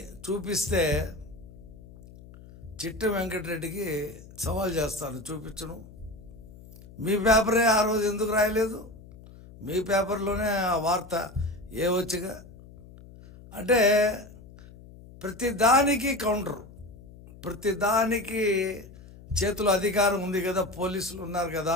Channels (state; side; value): noise; left; hum, 19 dB below the sound